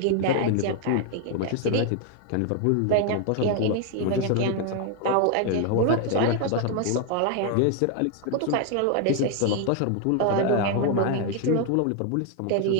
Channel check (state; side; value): different; both; correlation 0.00